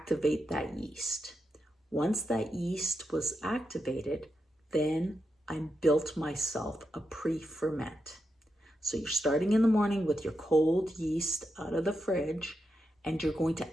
that yeast. Once that yeast was activated, then I built myself a pre-ferment. So you're starting in the morning with your cold yeast out of the fridge, and you're going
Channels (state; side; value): normal; both; correlation 0.86